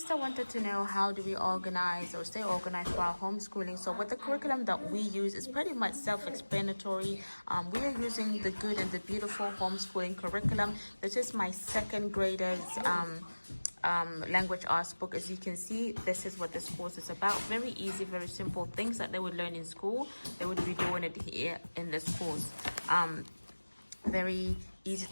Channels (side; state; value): both; inverted; correlation -1.00